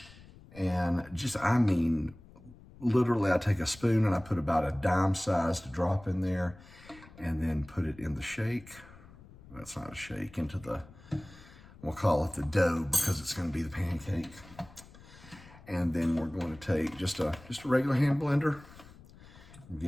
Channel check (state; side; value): noise; left; rumble, 21 dB below the sound